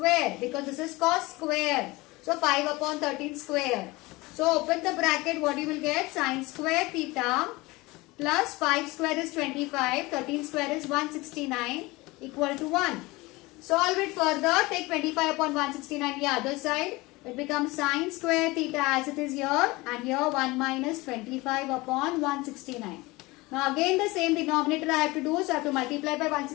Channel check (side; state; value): right; quieter; 22.0 dB